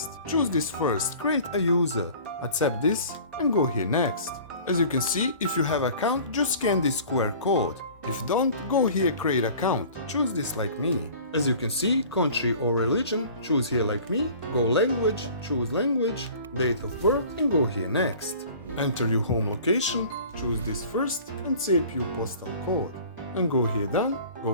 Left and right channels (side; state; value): both; inverted; correlation -0.46